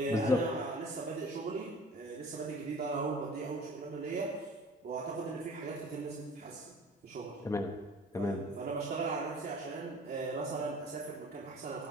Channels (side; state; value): both; normal; correlation 0.46